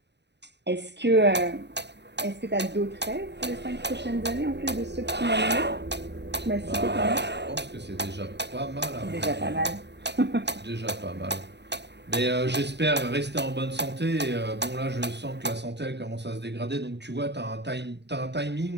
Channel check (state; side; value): late; left; 0.50 ms